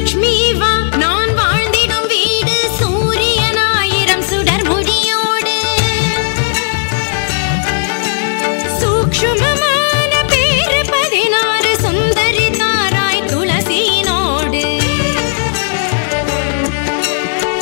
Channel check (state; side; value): silent; right; digital silence